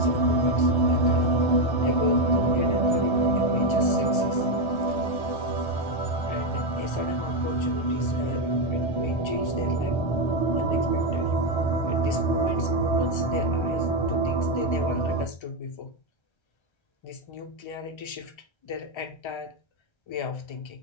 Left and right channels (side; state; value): right; late; 1.3 ms